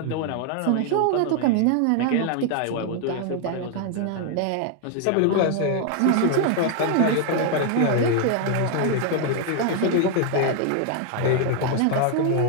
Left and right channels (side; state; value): both; different; correlation 0.00